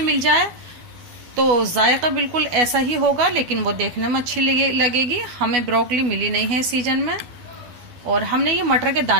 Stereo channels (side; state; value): left; late; 12 ms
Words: मिल जाए तो जायका बिल्कुल ऐसा ही होगा, लेकिन वो देखने में अच्छी लगेगी। हमें ब्रोकली मिली नहीं है सीजन में। और हमने ये मटर के